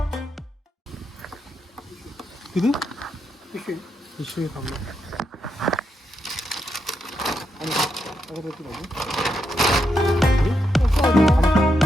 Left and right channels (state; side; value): normal; both; correlation 0.82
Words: किती पिशवी थांबलो.